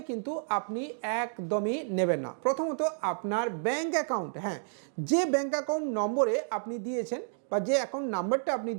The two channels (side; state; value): left; silent; digital silence